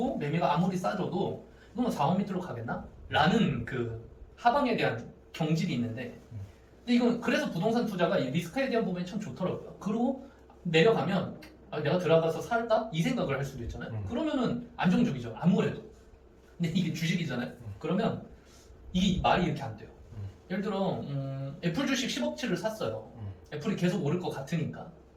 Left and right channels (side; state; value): both; identical; correlation 1.00